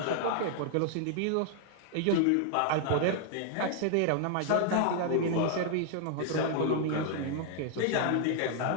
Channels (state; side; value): different; both; correlation 0.00